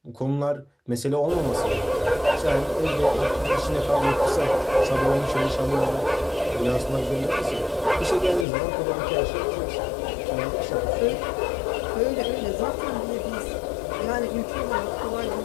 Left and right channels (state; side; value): drops out; right; at 8.5 s